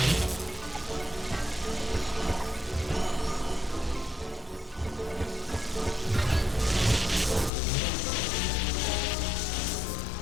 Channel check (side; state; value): right; drops out; at 7.5 s